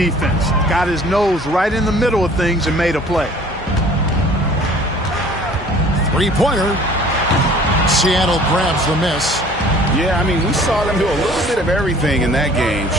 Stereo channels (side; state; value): both; normal; correlation 0.51